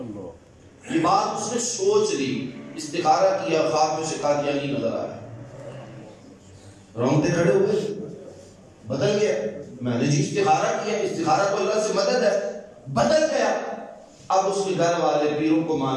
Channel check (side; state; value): both; identical; correlation 1.00